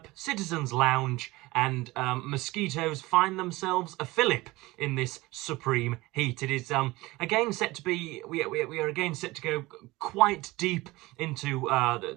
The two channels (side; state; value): left; quieter; 20.5 dB